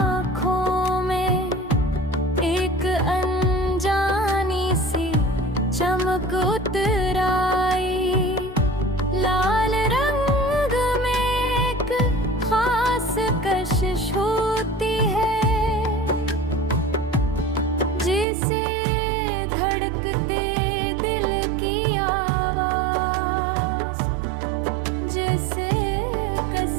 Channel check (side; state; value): left; drops out; at 18.2 s